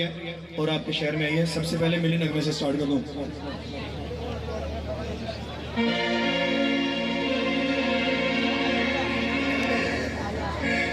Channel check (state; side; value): identical; both; correlation 1.00